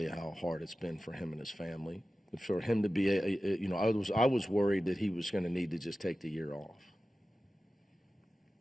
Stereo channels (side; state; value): both; normal; correlation 0.94